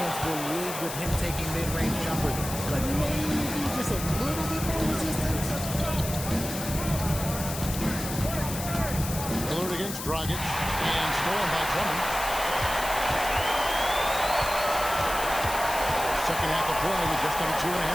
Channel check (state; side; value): noise; left; hiss, 8 dB below the sound